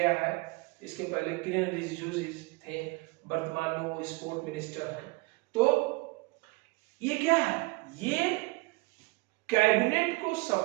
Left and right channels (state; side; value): quieter; left; 25.2 dB